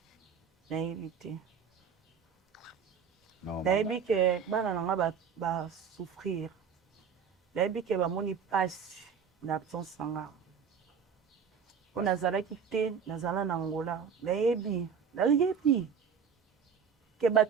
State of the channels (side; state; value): left; quieter; 6.8 dB